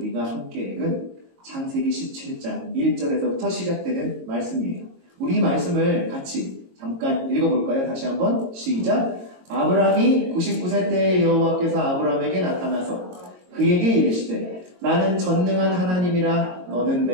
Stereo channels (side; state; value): left; late; 22 ms